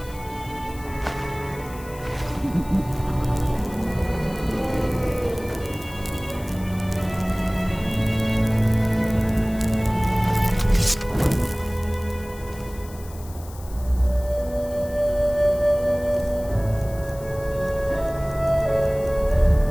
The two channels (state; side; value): noise; left; hiss, 20 dB below the sound